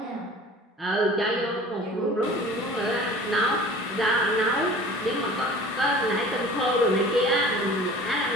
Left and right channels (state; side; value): normal; both; correlation 0.44